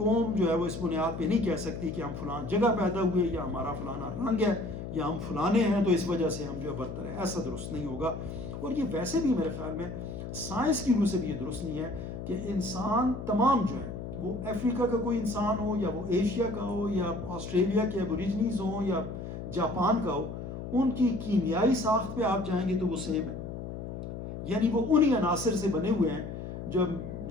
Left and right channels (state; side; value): noise; left; hum, 8 dB below the sound